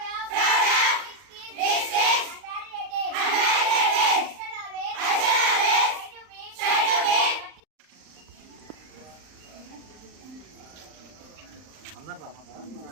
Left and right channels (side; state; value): left; late; 39 ms